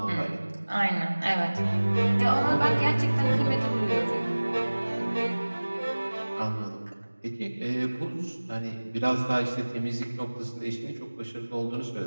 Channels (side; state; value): both; inverted; correlation -1.00